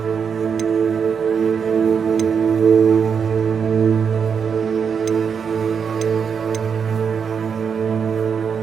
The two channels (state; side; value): quieter; left; 6.6 dB